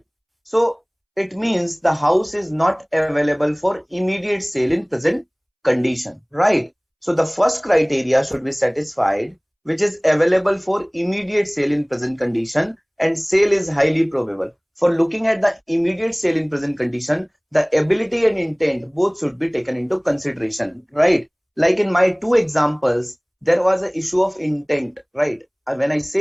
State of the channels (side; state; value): both; identical; correlation 1.00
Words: So it means the house is not available for immediate sale in present condition, right? So the first criteria should be satisfied, which is available for immediate sale in present condition and sale is highly probable. For looking at the immediate sale in present condition, the ability and intent both should be taken into consideration, right? Like in my two examples, there was an issue of intent, right? When I